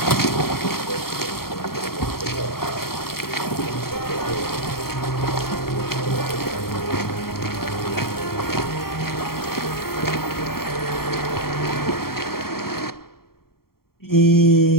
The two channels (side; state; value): right; late; 0.93 ms